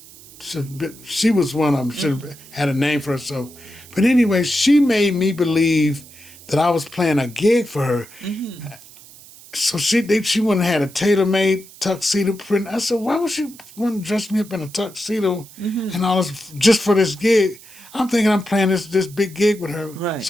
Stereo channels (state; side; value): noise; right; hiss, 21 dB below the sound